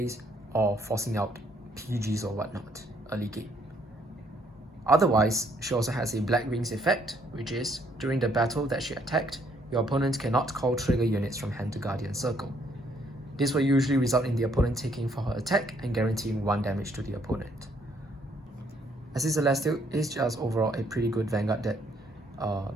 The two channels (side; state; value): both; normal; correlation 0.68